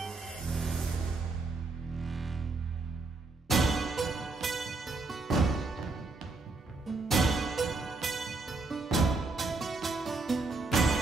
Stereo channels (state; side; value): quieter; left; 3.6 dB